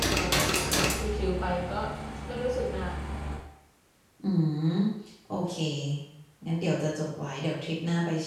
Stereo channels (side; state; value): both; identical; correlation 1.00